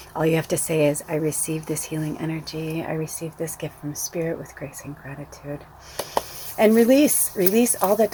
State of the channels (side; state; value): both; identical; correlation 1.00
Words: All you have to say is, I receive this healing energy. I receive this gift from Spirit with grace and gratitude. And release all that